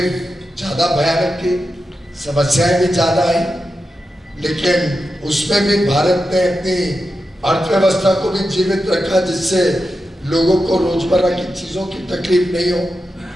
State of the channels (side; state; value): both; normal; correlation 0.90